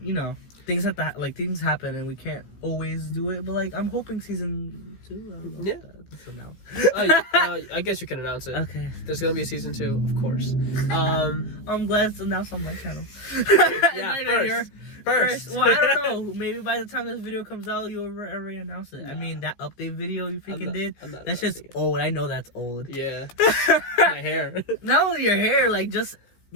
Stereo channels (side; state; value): right; late; 15 ms